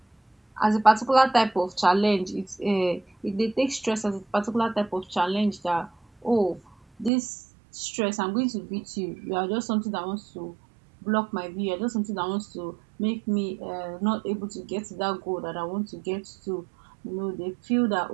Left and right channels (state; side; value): drops out; left; at 7.1 s